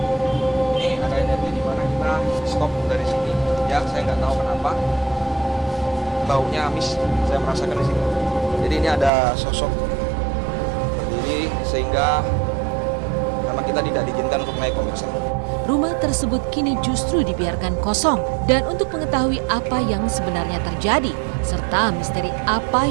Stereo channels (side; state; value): left; drops out; at 9.1 s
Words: Ini ada energi di mana kita stop dari sini. Ya, saya nggak tahu kenapa. Baunya amis saya merasakan di sini. Jadi ini ada sosok berdiri sehingga memang kita tidak diizinkan untuk naik pemirsa. Rumah tersebut kini justru dibiarkan kosong. Dan untuk mengetahui apa yang sebenarnya terjadi, serta misteri apa